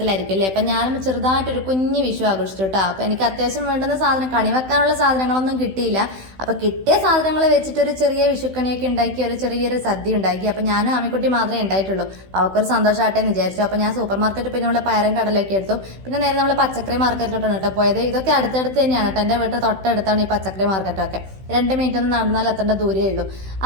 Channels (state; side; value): late; left; 16 ms